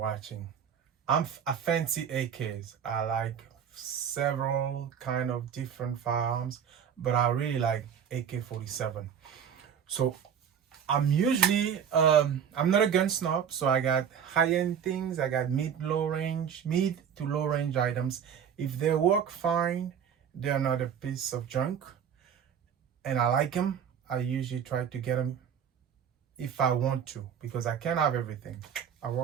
I'm a fancy AKs. I like several kind of different firearms, but I really like AK-47. So I'm usually I'm not a gun snob, so I got high-end things, I got mid to low range items. If they work fine, they're not a piece of junk, and I like them. I usually try to get them if I want to, because I can't have everything. I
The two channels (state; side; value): quieter; left; 8.1 dB